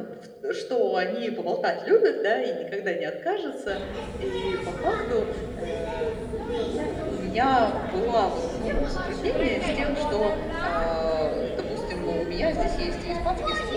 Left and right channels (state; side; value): identical; both; correlation 1.00